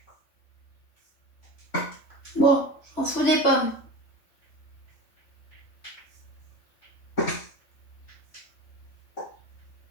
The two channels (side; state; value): right; late; 3.6 ms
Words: Bon, je m'en fous des pommes.